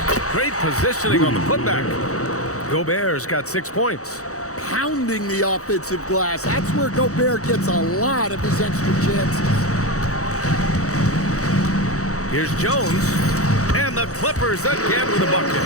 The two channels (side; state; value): right; late; 0.65 ms